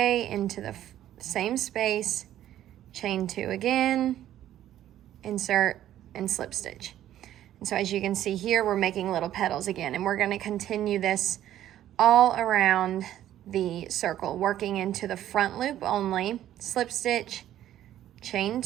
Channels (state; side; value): quieter; left; 12.2 dB